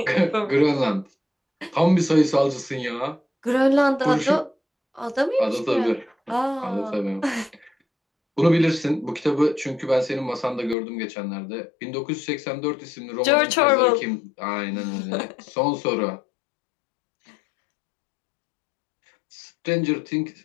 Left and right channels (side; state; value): right; drops out; at 10.8 s